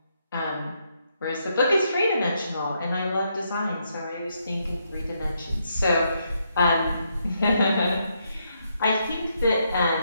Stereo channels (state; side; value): inverted; both; correlation -0.78